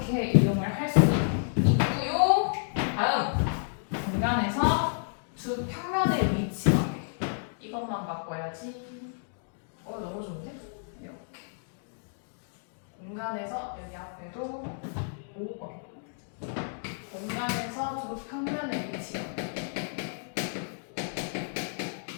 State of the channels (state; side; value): silent; right; digital silence